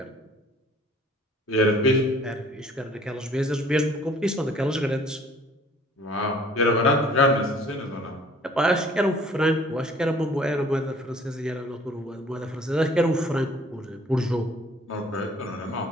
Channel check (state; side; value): normal; both; correlation 0.55